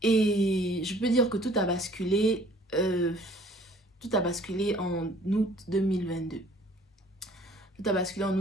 Et je peux dire que tout a basculé. Tout a basculé en août 2022. Tout a basculé en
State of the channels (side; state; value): both; normal; correlation 0.55